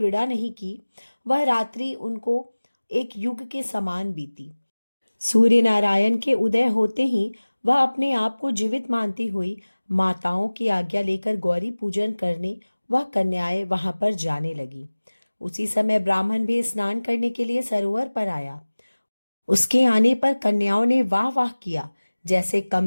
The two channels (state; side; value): inverted; both; correlation -1.00